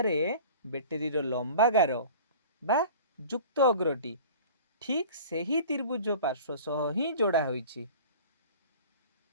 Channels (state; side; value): inverted; both; correlation -0.41